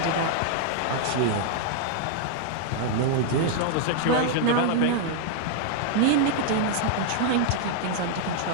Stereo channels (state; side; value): different; both; correlation -0.01